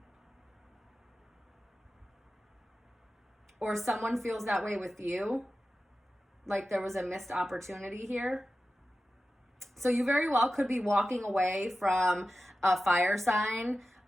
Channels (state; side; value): normal; both; correlation 0.94